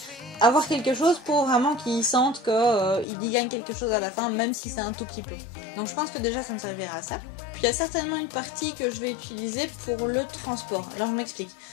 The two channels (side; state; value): right; drops out; at 3.1 s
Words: avoir quelque chose pour vraiment qu'il sente qu'il y gagne quelque chose à la fin, même si c'est un tout petit peu. Donc je pense que déjà ça me servira à ça. Puis il y a certainement une partie que je vais utiliser pour le transport. Alors je m'explique.